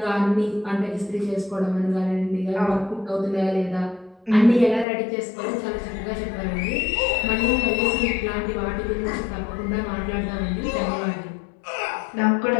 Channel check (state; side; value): drops out; right; at 4.9 s